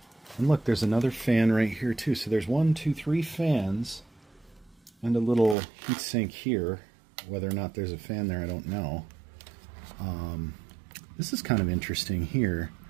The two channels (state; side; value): drops out; left; at 5.6 s